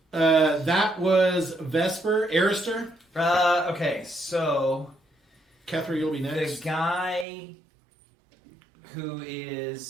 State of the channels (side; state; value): left; drops out; at 7.2 s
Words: that was Vesper. Arister. Okay, so Kethra, you'll be the next. guy who